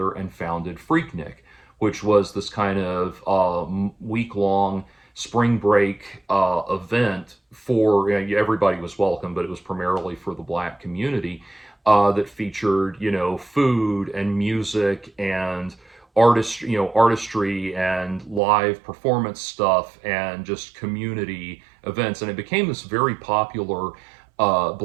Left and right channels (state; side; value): drops out; left; at 18.4 s